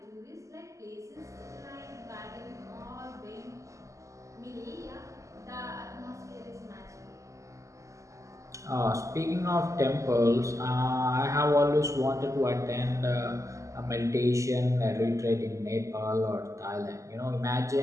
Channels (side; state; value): left; late; 0.15 ms